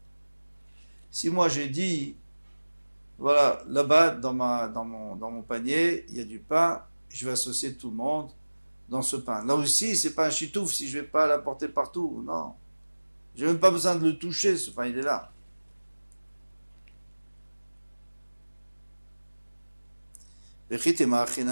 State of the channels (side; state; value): both; inverted; correlation -1.00